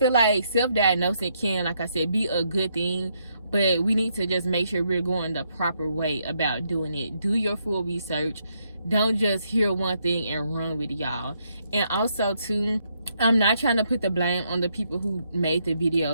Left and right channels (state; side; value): inverted; both; correlation -0.76